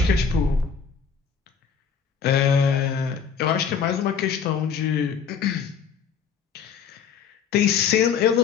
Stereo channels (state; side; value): quieter; right; 6.6 dB